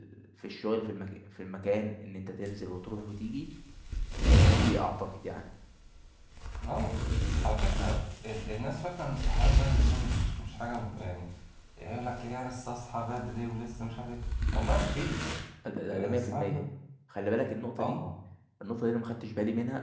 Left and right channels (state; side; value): identical; both; correlation 1.00